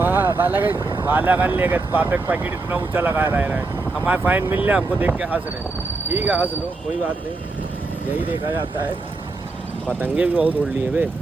बालागंज ले गए। पापे का पैकेट इतना ऊंचा लगा रहा है। हमारे फाइन मिल रहा, हमको देख के हंस रहे। ठीक है हंस लो, कोई बात नहीं, यही देखा जाता है। पतंगे भी बहुत उड़ लिए वे।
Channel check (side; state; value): left; quieter; 3.5 dB